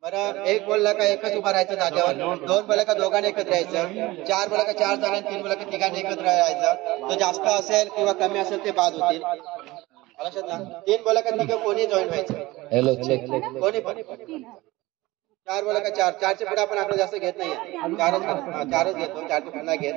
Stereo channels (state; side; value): quieter; left; 19.8 dB